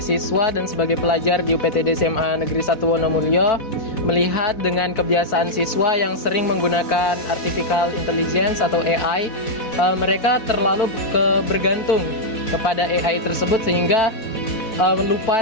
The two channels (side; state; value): right; late; 4.5 ms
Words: siswa dan sebagai pelajar di UPTD SMA Negeri 1 Wonomulyo, melihat dengan kebiasaan siswa yang sering menggunakan artificial intelligence atau AI, mereka terlalu bergantung kepada AI tersebut sehingga